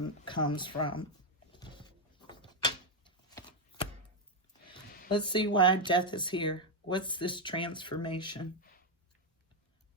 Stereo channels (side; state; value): both; normal; correlation 0.04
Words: comes from. Let's see why death is here. What's this transformation?